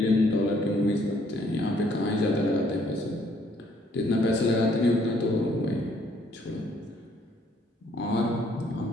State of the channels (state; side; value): normal; both; correlation 0.65